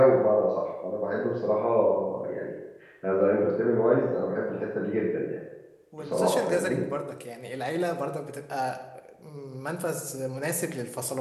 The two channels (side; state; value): both; identical; correlation 1.00